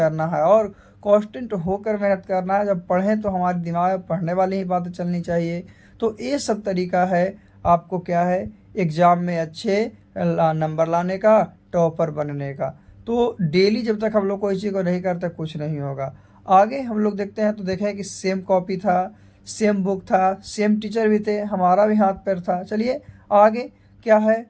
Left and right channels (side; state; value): both; identical; correlation 1.00